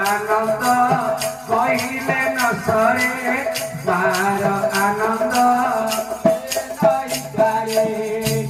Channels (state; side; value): identical; both; correlation 1.00